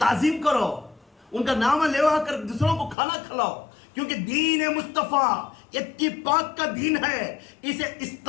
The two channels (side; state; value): right; drops out; at 3.0 s